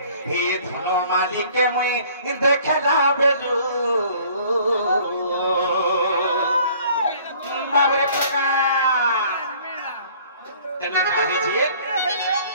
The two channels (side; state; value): both; inverted; correlation -0.54